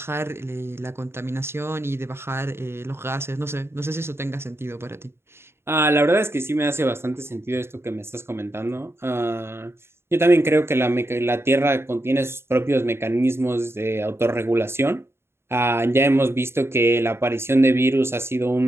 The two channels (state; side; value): late; left; 0.12 ms